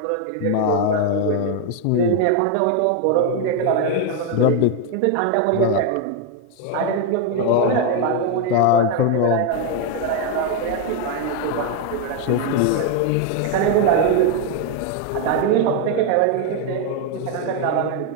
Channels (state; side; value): different; both; correlation 0.01